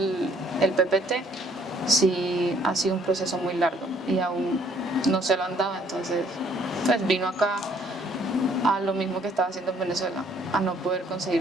PPT, sí ha sido un proceso muy largo y aún no se lo han dado, entonces pues vino acá a lo mismo que estaba haciendo en Venezuela, a no poder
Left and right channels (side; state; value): both; normal; correlation 0.62